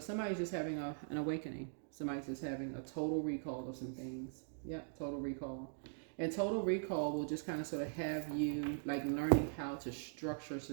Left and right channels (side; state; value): left; silent; digital silence